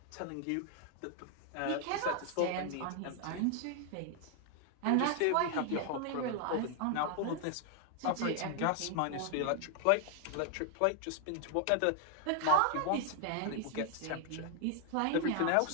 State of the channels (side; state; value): both; different; correlation 0.00